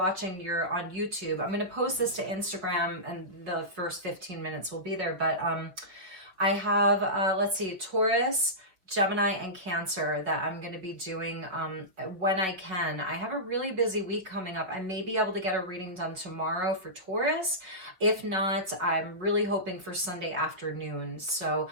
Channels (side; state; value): left; late; 5.7 ms